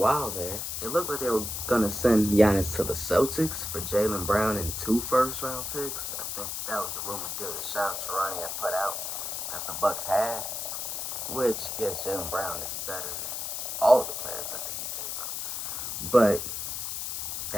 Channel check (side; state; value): left; noise; hiss, 4 dB below the sound